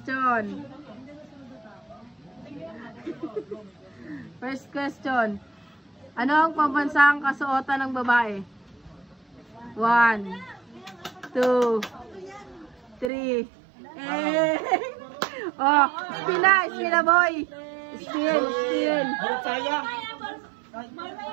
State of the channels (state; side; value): drops out; left; at 13.1 s